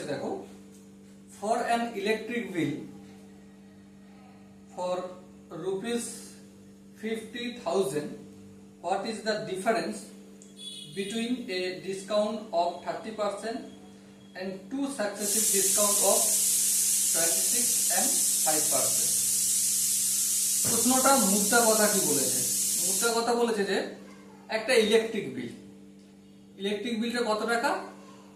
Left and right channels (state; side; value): identical; both; correlation 1.00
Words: দেখো, for an electric bill for rupees 50,000, what is the difference between a discount of 30% and two successive discount of 26 and 5%? প্রশ্নটা মুদ্রা কথা কি বলেছে? মুদ্রা কথা বলেছে যে একটা ইলেকট্রিক বিলটা কত টাকা?